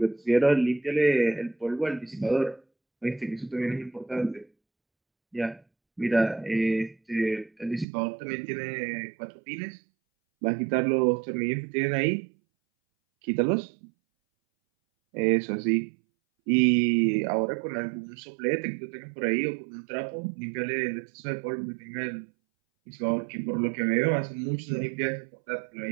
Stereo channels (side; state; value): left; drops out; at 7.9 s